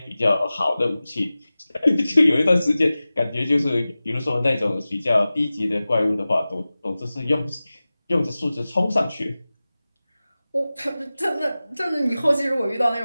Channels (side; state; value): both; inverted; correlation -0.97